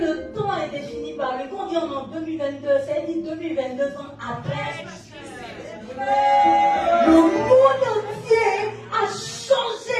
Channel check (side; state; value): both; identical; correlation 1.00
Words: temps est défini par lui. Quand on dit en 2022, ça dit 2022 ans après. Le monde entier a